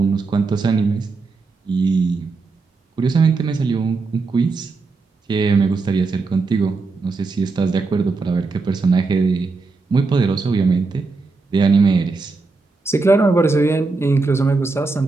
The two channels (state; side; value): quieter; left; 4.0 dB